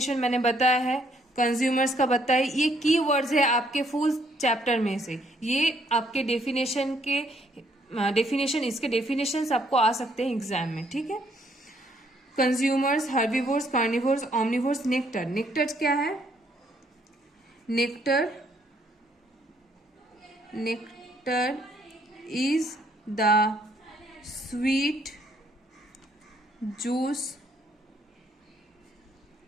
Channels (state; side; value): normal; both; correlation 0.68